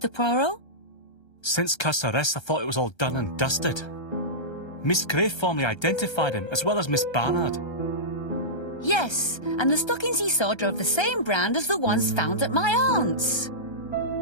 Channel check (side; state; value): right; late; 1.3 ms